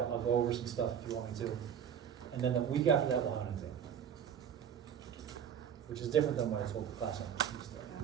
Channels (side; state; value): left; quieter; 8.4 dB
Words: I'll go over some stuff if you want me to. And then the week after that, we'll have an exam. Which is different than what I told the class on Tuesday.